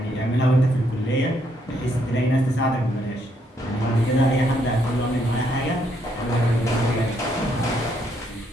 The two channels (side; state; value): both; normal; correlation 0.73